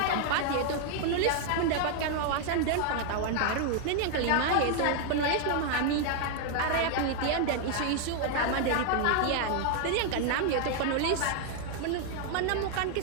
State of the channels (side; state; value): both; different; correlation 0.00